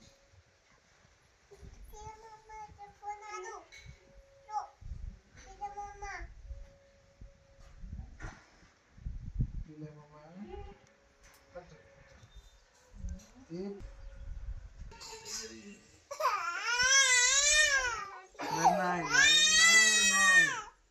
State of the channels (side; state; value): both; identical; correlation 1.00